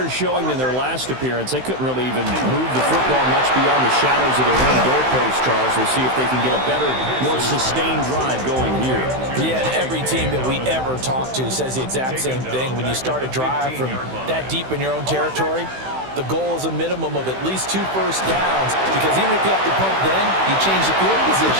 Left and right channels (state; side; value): late; left; 16 ms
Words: showing than their last appearance. They couldn't really even move the football much beyond the shadows of their own goalpost, Charles. We'll see if they can get a better, more sustained drive going here. Yeah, and every team that we ever talk to says the exact same thing. When you start a drive from that deep in your own territory, the goal is a minimum of at least 2 first downs, because even if you have to punt then, you change the field